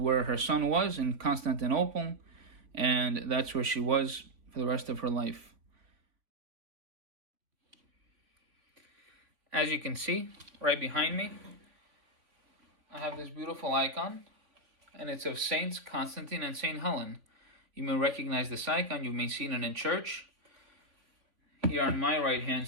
her son was in Constantinople, and that's where she was for the rest of her life. As you can see, right behind me, I have this beautiful icon, and it's of Saints Constantine and Saint Helen. You may recognize this icon, you may see it in church. Here on my right-hand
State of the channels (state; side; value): late; left; 3.5 ms